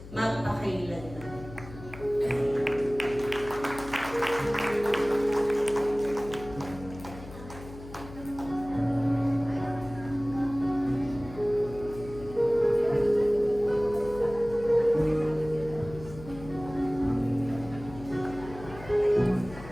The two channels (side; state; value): left; noise; hum, 15 dB below the sound